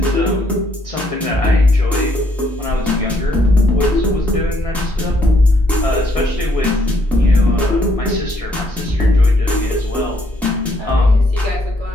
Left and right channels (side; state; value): both; normal; correlation 0.70